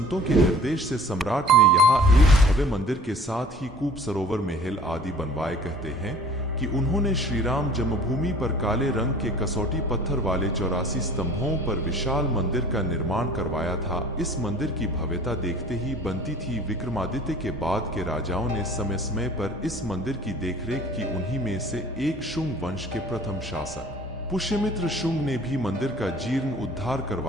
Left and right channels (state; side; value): normal; both; correlation 0.48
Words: के निर्देश से सम्राट ने यहाँ एक भव्य मंदिर के साथ ही कूप, सरोवर, महल आदि बनवाए। कहते हैं कि उन्होंने श्री राम जन्मभूमि पर काले रंग के कसौटी पत्थर वाले 84 स्तंभों पर विशाल मंदिर का निर्माण करवाया था। इस मंदिर की भव्यता देखते ही बनती थी। विक्रमादित्य के बाद के राजाओं ने समय समय पर इस मंदिर की देखरेख की। उन्हीं में से एक शुंग वंश के प्रथम शासक पुष्यमित्र शुंग ने भी मंदिर का जीर्ण उद्धार